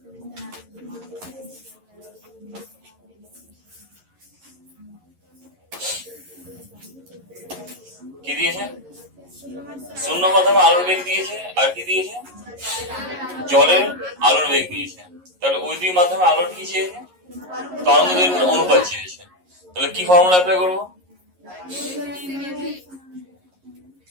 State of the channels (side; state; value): left; late; 11 ms